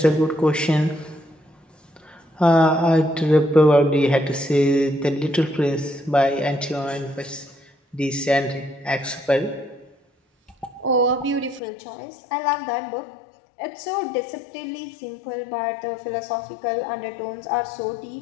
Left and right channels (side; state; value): right; drops out; at 11.6 s